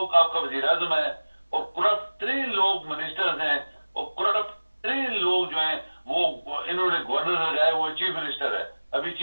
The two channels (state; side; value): inverted; both; correlation -1.00